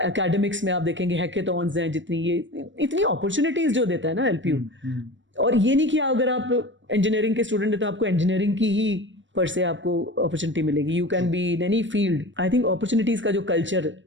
में आप देखेंगे हैकेथॉन्स हैं, जितनी ये इतनी अपॉर्चुनिटीज जो देता है ना एलपीयू। और ये नहीं कि अगर आप इंजीनियरिंग के स्टूडेंट हैं तो आपको इंजीनियरिंग की ही पर से आपको अपॉर्चुनिटी मिलेगी. You can be in any field. I think opportunities का जो कल्चर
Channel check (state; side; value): late; left; 0.54 ms